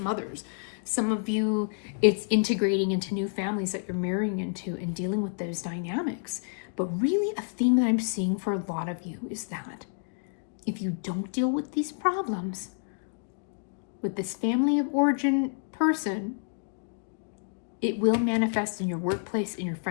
mothers. Some of you, it's integrating into new families that you're marrying into and dealing with those dynamics. But really, a theme that I'm seeing for a lot of you is that if you don't deal with these problems with this family of origin person, it will manifest in your workplace, in your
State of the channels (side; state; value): right; silent; digital silence